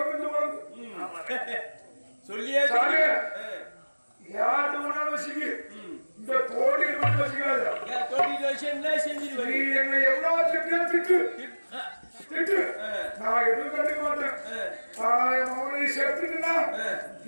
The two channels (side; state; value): both; inverted; correlation -1.00